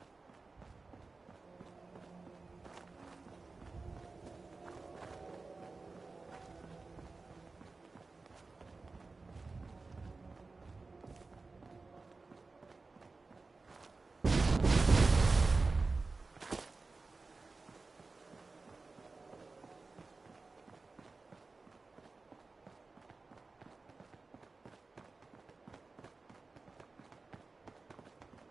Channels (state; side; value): quieter; left; 3.8 dB